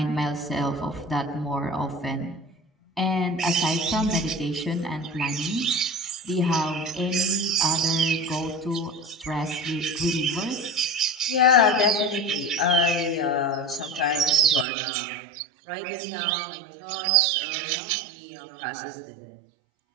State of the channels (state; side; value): drops out; left; at 14.7 s